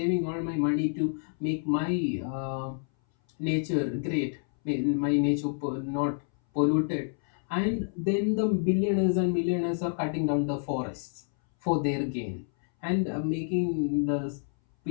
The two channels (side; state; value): right; silent; 59 dB below the other